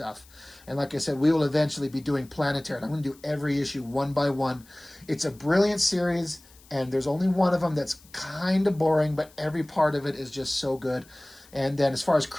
And like I said, we will eventually be doing Planetary. I'm going to do every issue one by one. It's a brilliant series, and there's only one of them that's kind of boring, but every part of it is just so good. And then as far as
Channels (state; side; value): noise; left; hiss, 26 dB below the sound